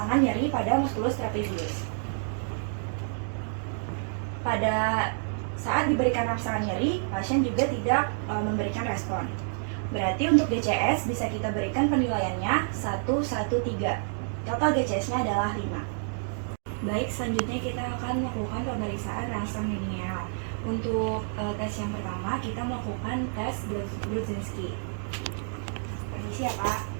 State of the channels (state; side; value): silent; left; digital silence